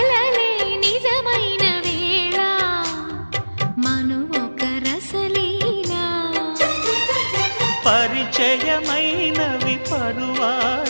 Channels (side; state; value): both; inverted; correlation -1.00